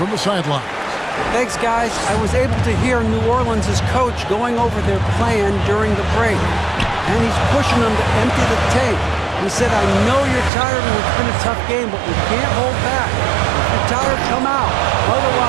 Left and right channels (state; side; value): drops out; left; at 10.5 s